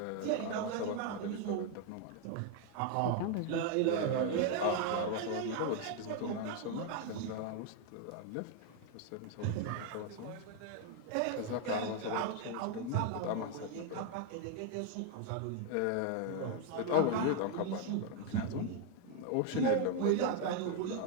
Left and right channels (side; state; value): both; different; correlation 0.01